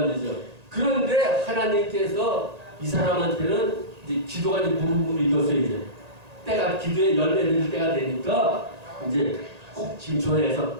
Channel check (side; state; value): left; late; 1.8 ms